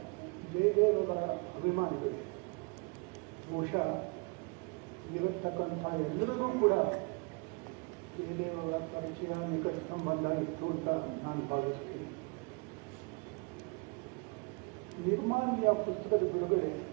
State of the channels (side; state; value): left; quieter; 31.2 dB